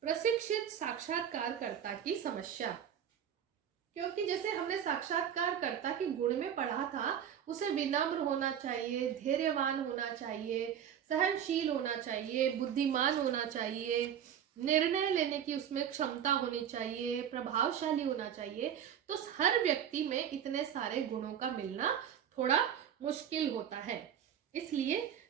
प्रशिक्षित साक्षात्कारकर्ता की समस्या। क्योंकि जैसे हमने साक्षात्कारकर्ता के गुण में पढ़ा था, उसे विनम्र होना चाहिए, धैर्यवान होना चाहिए, सहनशील होना चाहिए, बुद्धिमान होना चाहिए, निर्णय लेने की उसमें क्षमता होनी चाहिए, प्रभावशाली होना चाहिए। तो हर व्यक्ति में इतने सारे गुणों का मिलना थोड़ा मुश्किल होता है। इसलिए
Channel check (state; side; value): quieter; left; 9.1 dB